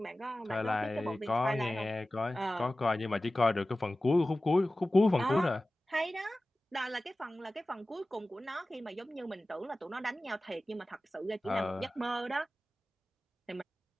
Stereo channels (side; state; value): both; normal; correlation 0.96